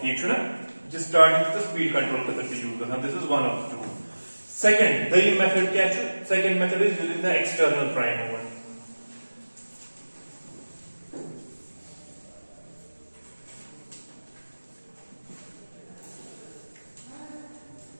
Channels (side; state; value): both; inverted; correlation -1.00